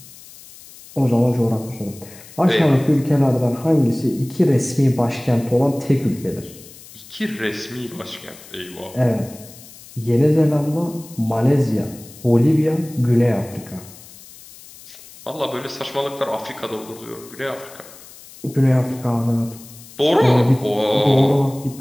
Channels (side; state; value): left; noise; hiss, 20 dB below the sound